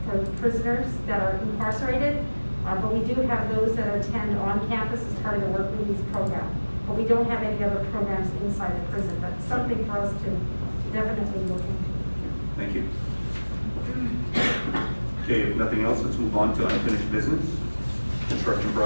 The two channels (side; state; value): both; inverted; correlation -1.00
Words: for prisoners that are incarcerated. But we do have those that attend on campus as part of the work release program. But we don't have any other programs inside the prison, but something for us to definitely look into. Thank you. Okay, if nothing else, let's move on to unfinished business. Construction